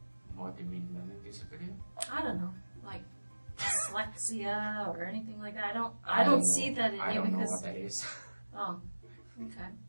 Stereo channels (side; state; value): both; inverted; correlation -1.00